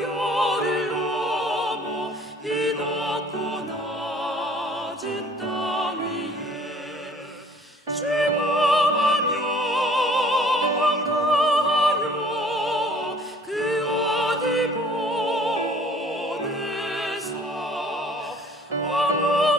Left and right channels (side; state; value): both; normal; correlation 0.53